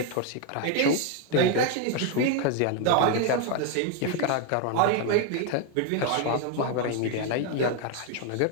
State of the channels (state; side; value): different; both; correlation 0.00